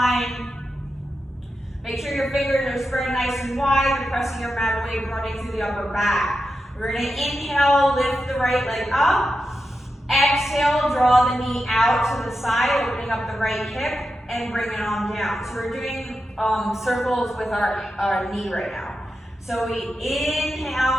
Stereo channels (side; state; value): both; normal; correlation 0.89